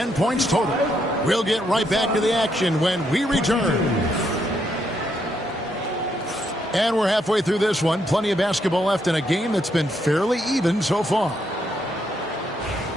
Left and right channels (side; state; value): both; normal; correlation 0.76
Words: points total. We'll get right back to the action when we return. And we're halfway through this one. Plenty of basketball left in a game that's been fairly even so far.